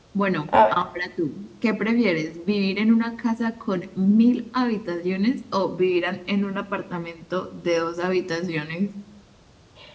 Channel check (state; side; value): identical; both; correlation 1.00